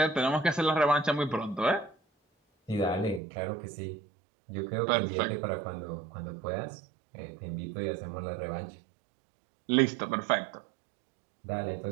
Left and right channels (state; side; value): drops out; left; at 3.2 s